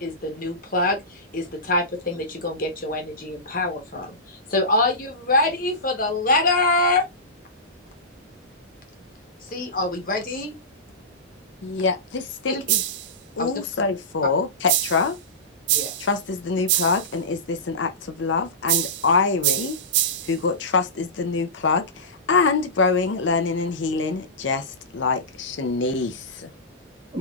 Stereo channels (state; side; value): normal; both; correlation -0.17